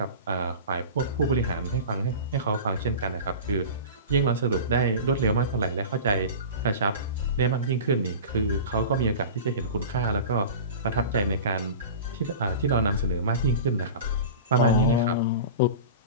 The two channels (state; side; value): inverted; both; correlation -0.33